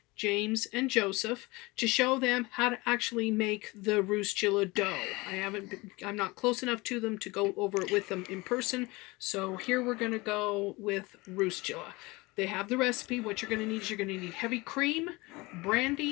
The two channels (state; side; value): quieter; right; 23.3 dB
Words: James, and Joseph, to show them how to actually make the Roosjala dough. I'm not close enough to them to go over it with them in person, so here we're going to go with Roosjala. They have the recipe. What you're going to need is you're going to need heavy cream,